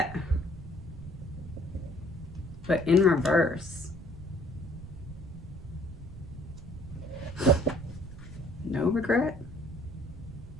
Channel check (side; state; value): right; noise; rumble, 14 dB below the sound